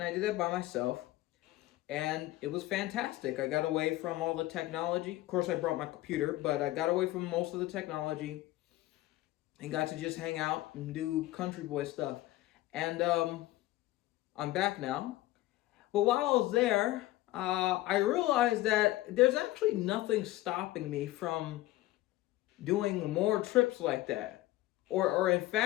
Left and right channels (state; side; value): quieter; right; 16.9 dB